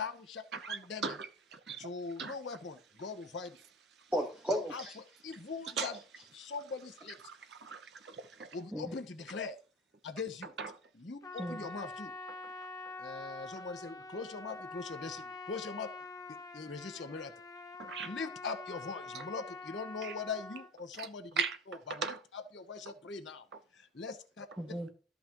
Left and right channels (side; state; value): both; normal; correlation 0.34